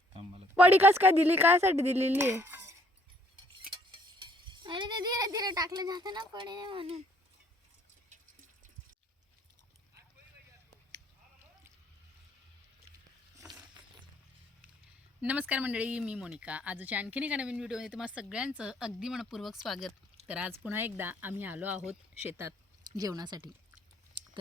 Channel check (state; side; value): normal; both; correlation 0.65